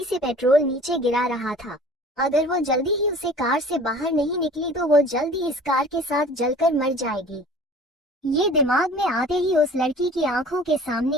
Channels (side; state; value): both; normal; correlation 0.46